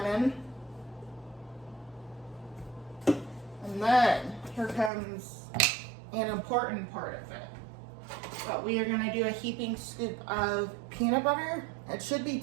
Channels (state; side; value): drops out; left; at 4.9 s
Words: And then, here comes an important part of it. But we are gonna do a heaping scoop of peanut butter. It should be